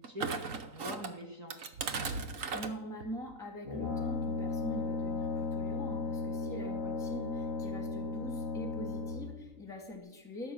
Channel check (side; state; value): left; late; 3.9 ms